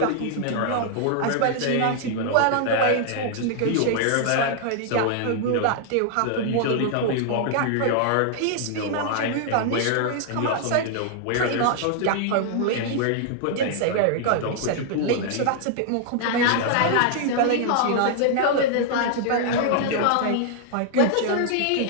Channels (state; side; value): different; both; correlation -0.01